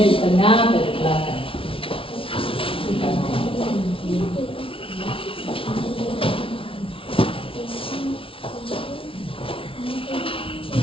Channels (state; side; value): late; right; 0.26 ms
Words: di tengah dan di belakang.